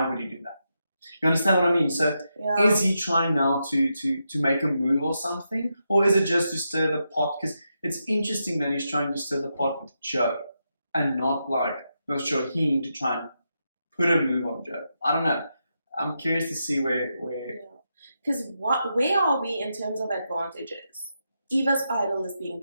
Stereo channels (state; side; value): inverted; both; correlation -0.85